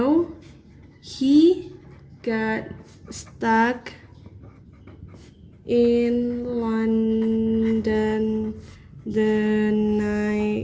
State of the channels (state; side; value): identical; both; correlation 1.00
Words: he got stuck in London the